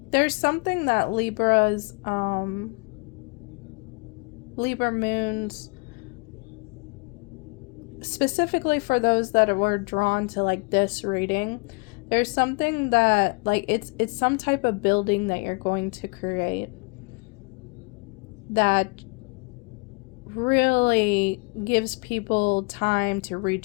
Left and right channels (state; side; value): quieter; right; 30.8 dB